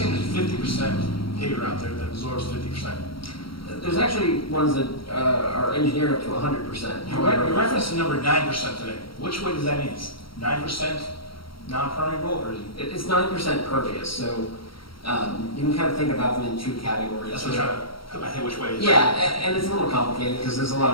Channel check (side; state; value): right; late; 0.74 ms